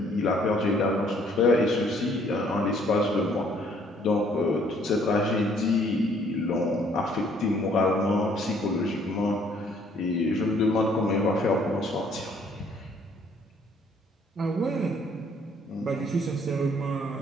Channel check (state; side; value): normal; both; correlation 0.62